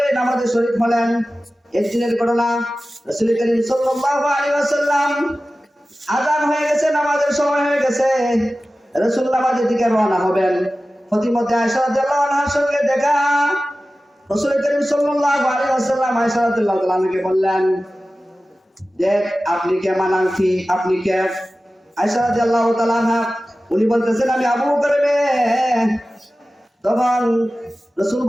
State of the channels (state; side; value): normal; both; correlation 0.95